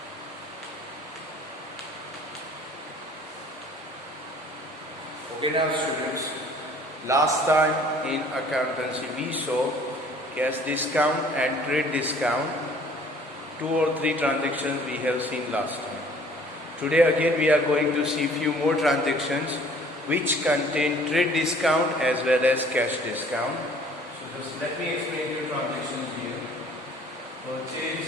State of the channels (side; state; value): both; normal; correlation 0.53